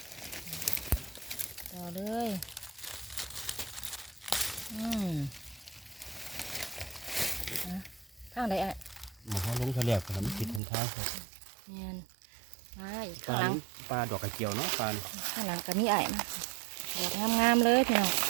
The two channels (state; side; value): drops out; left; at 10.6 s